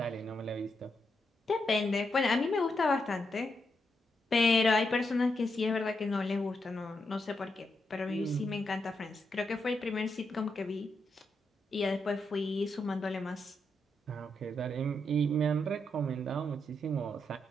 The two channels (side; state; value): both; normal; correlation 0.82